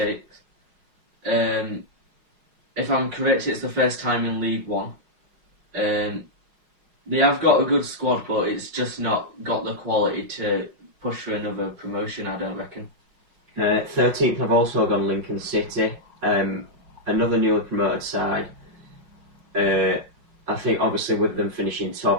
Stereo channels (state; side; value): late; left; 5.5 ms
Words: If I'm correct, it's the first time in League One. They have got a good squad, but it's just not got the quality to push for another promotion, I don't reckon. 13th I've also gone Lincoln City. Another newly promoted side. I think obviously with them finishing